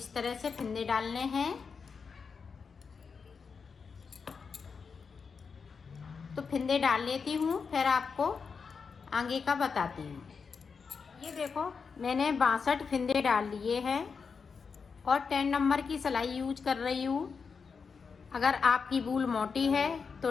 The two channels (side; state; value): right; quieter; 5.5 dB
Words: तरह से फिंदे डालने हैं। तो फिंदे डाल लेती हूँ, फिर आपको आगे का बताती हूँ। ये देखो, मैंने 62 फिंदे डाल लिए हैं और 10 नंबर की सिलाई यूज कर रही हूँ। अगर आपकी वूल मोटी है